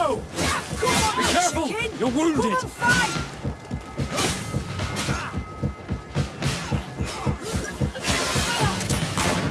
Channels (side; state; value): both; identical; correlation 1.00